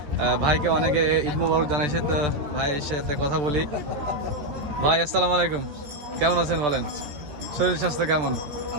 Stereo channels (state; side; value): late; left; 14 ms